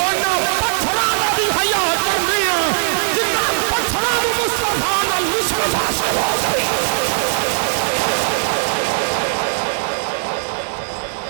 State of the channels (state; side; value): silent; left; digital silence